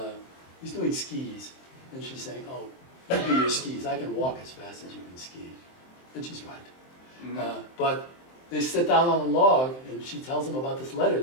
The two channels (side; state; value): right; late; 23 ms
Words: skis, and she's saying, "Oh, you do your skis. I can walk as fast as you can ski," and she's right. But they sit down on a log, and she tells him about this letter